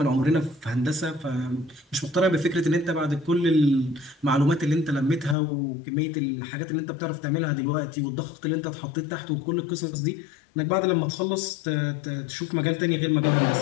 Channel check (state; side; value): drops out; right; at 5.4 s